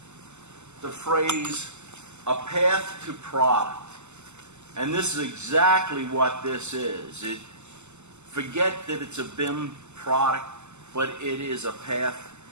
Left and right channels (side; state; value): left; late; 0.83 ms